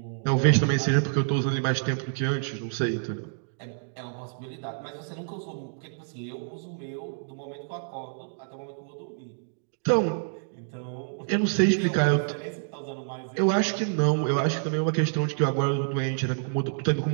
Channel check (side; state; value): left; silent; digital silence